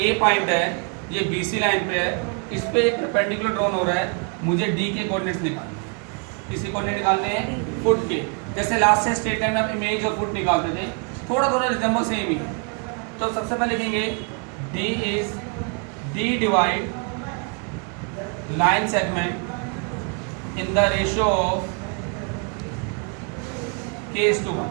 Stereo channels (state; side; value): quieter; left; 37.8 dB